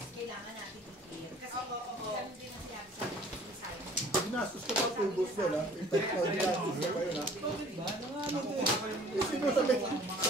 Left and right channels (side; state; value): both; normal; correlation 0.51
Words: kailangan natin i-clear. Kasi ganun din ang sinabi sa akin ni Simon. Ginastos ka pa 2 boss yun ha? In fact, ginastos ka pa yun ha? Eh, sino sabay